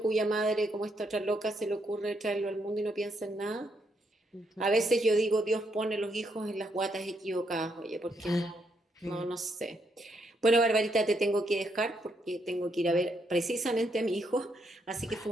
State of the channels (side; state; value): both; normal; correlation 0.76